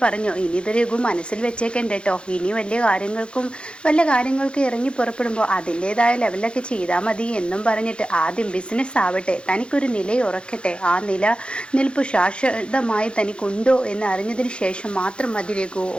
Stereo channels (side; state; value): right; late; 0.056 ms